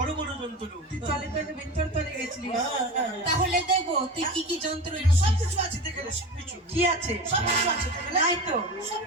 বড় যন্ত্র। তুই চলে তো ভিতর চলে গেছিলি। তাহলে দেখবো তুই কি কি যন্ত্র এনেছিস। সবকিছু আছে দেখে নে, সবকিছু কি আছে? সবকিছু আছে দেখে নে। নাই তো।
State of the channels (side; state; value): both; normal; correlation 0.29